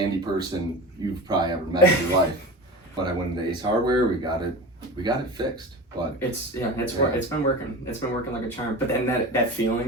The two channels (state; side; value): normal; both; correlation 0.31